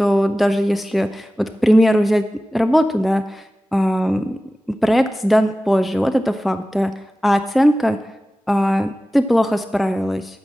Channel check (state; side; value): normal; both; correlation 0.96